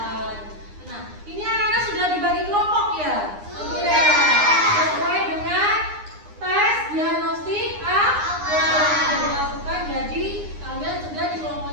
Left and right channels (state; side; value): late; left; 9.8 ms